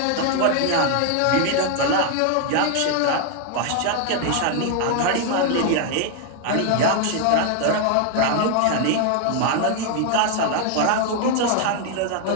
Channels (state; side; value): different; both; correlation 0.00